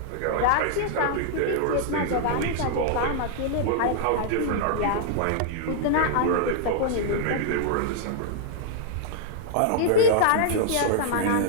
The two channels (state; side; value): different; both; correlation -0.01